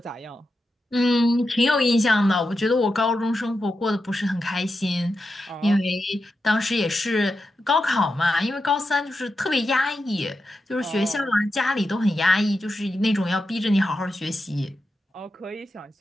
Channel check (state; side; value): normal; both; correlation 0.89